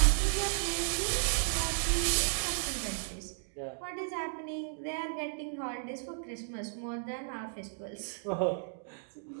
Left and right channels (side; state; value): left; silent; digital silence